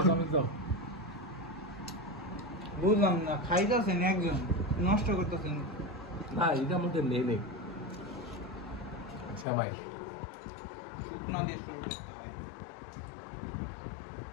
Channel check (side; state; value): right; drops out; at 9.5 s